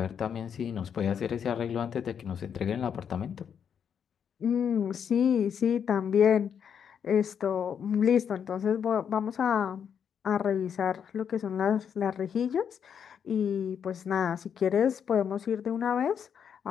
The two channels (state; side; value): quieter; right; 7.8 dB